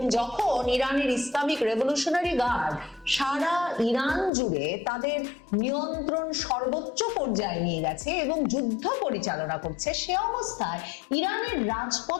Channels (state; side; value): drops out; right; at 4.3 s